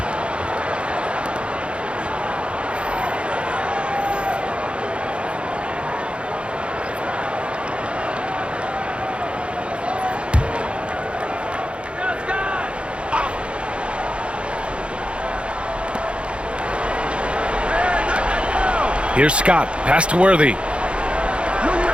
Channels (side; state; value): left; late; 0.058 ms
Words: Here's Scott, pass to Worthy.